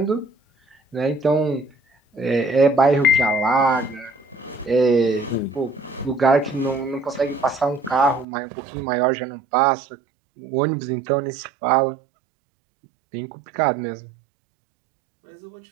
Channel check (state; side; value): drops out; left; at 8.2 s